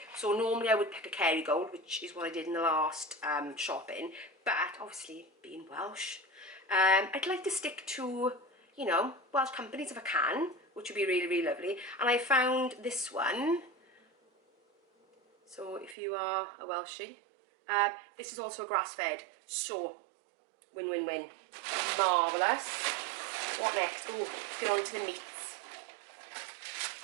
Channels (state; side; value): drops out; left; at 16.0 s